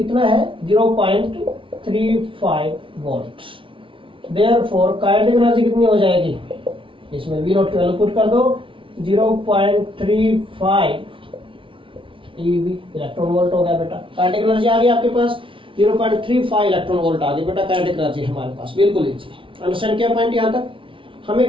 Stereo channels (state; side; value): late; left; 0.25 ms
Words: है? 0.35 वोल्ट। देयरफॉर काइनेटिक एनर्जी कितनी हो जाएगी? इसमें वी नॉट की वैल्यू पुट कर दो, 0.35 eV इलेक्ट्रॉन वोल्ट हो गया बेटा। काइनेटिक एनर्जी आ गई आपके पास 0.35 इलेक्ट्रॉन वोल्ट आ गई बेटा, काइनेटिक एनर्जी हमारे पास। बिल्कुल इजी। अंडरस्टैंड क्या पॉइंट? यहाँ तक हमें